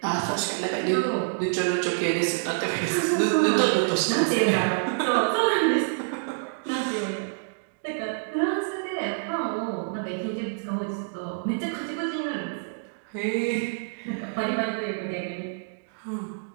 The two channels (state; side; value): silent; left; digital silence